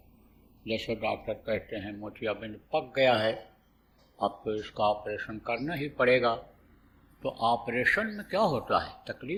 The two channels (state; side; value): identical; both; correlation 1.00